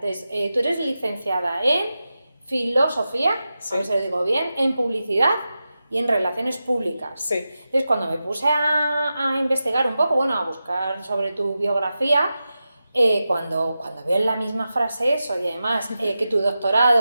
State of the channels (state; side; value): inverted; both; correlation -0.92